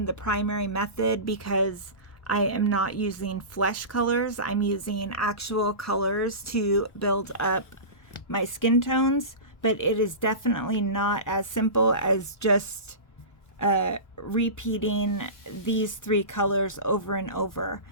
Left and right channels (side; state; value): right; late; 1.2 ms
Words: the primary method because I am not using flesh colors. I'm using actual colors to build up my skin tones, but it is definitely not as simple as just repeating these three colors over and over.